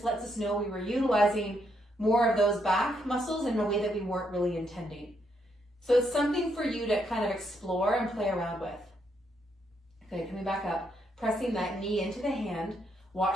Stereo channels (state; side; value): normal; both; correlation 0.76